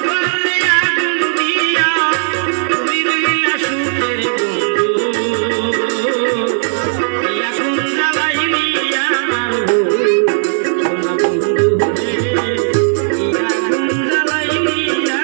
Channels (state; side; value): silent; left; digital silence